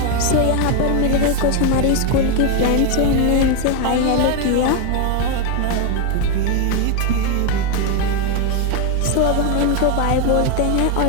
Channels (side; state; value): both; different; correlation 0.01